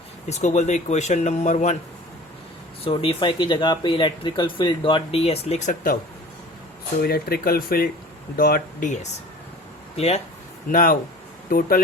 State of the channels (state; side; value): normal; both; correlation 0.42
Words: इसको बोलते हैं इक्वेशन नंबर 1. सो d phi की जगह पे इलेक्ट्रिकल फील्ड डॉट ds लिख सकता हूँ. सो electrical field dot ds, clear? Now total